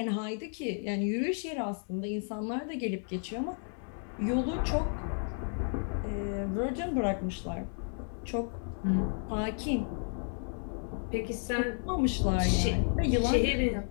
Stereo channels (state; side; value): silent; right; 56 dB below the other